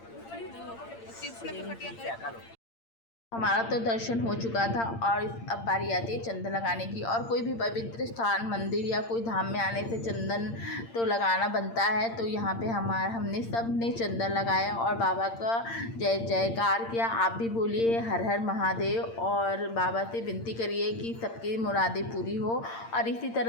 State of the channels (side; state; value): right; late; 8.8 ms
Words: हमारा तो दर्शन हो चुका था और अब बारी आती है चंदन लगाने की। और कोई भी पवित्र स्थान, मंदिर या कोई धाम में आने से चंदन तो लगाना बनता है। तो यहाँ पे हमने सब ने चंदन लगाया और बाबा का जय जयकार किया। आप भी बोलिए हर हर महादेव और बाबा से विनती करिए कि सबकी मुरादें पूरी हो। और इसी